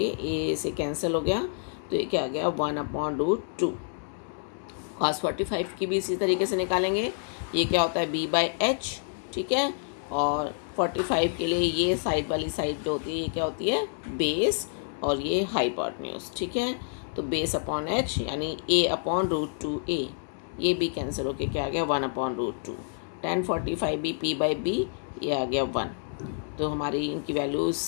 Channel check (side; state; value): right; silent; digital silence